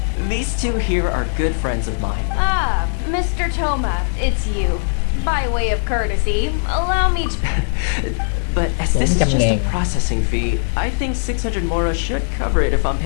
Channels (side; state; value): right; silent; digital silence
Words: these two here are good friends of mine. Ah, Mr. Toma, it's you. By way of courtesy, allow me to... But as this is just a processing fee, I think 600 mora should cover it if I'm